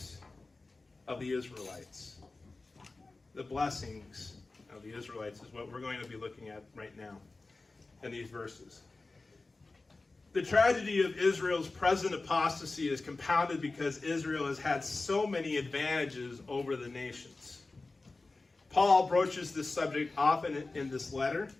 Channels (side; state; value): right; quieter; 3.4 dB